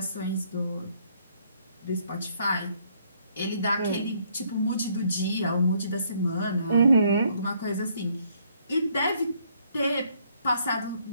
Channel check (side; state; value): both; inverted; correlation -0.67